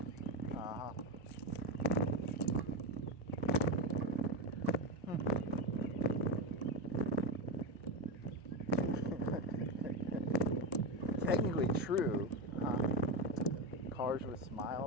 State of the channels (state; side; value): normal; both; correlation 0.16